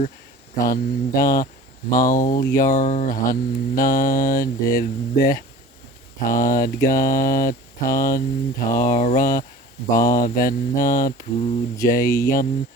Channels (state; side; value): normal; both; correlation 0.42